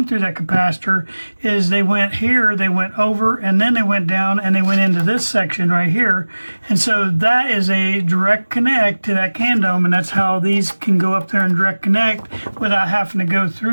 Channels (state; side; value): inverted; both; correlation -1.00